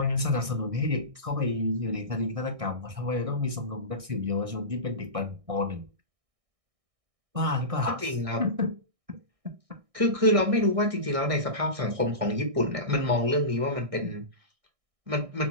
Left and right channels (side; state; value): left; late; 1.6 ms